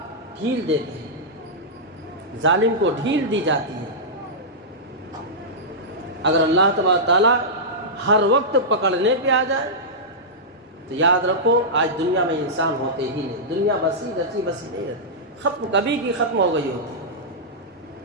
ڈھیل دیتے ہیں، ظالم کو ڈھیل دی جاتی ہے۔ اگر اللہ تبارک تعالیٰ ہر وقت پکڑنے پہ آ جائے تو یاد رکھو آج دنیا میں انسان ہوتے ہی نہیں، دنیا بسی رچی بسی نہیں رہتی، ختم کبھی کی ختم ہو گئی ہوتی ہے۔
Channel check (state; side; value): normal; both; correlation -0.12